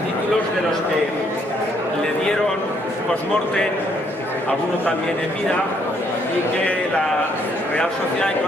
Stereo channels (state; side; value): normal; both; correlation 0.69